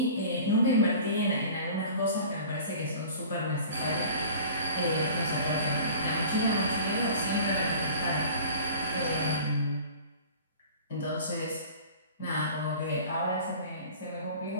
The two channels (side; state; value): both; inverted; correlation -0.42